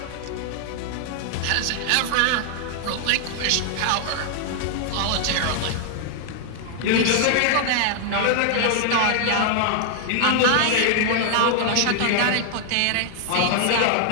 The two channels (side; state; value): both; different; correlation 0.00